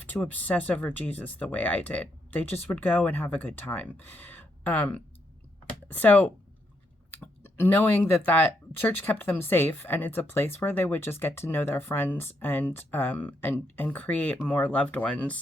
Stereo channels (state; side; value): normal; both; correlation 0.78